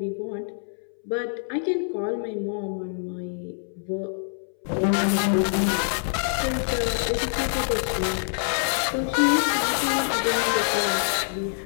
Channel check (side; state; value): right; silent; 61 dB below the other